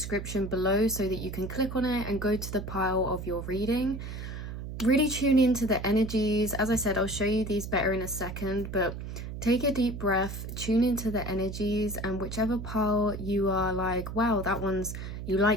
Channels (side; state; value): right; noise; hum, 8 dB below the sound